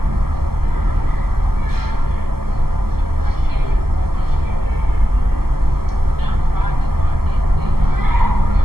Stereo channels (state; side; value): late; left; 0.95 ms